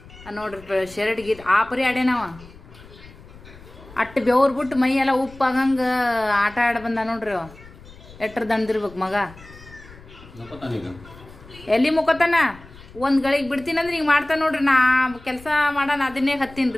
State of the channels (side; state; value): left; noise; rumble, 20 dB below the sound